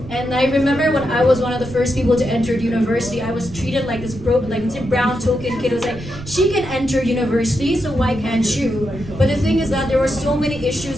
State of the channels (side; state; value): right; noise; rumble, 14 dB below the sound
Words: And I remember when I was one of the first people to enter university, I was treated like this brown token kid. It was like, she can enter university, so why can't you? But the thing is that there were so many